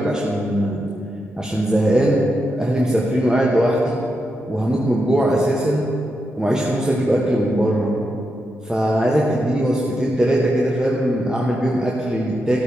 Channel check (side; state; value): both; normal; correlation 0.85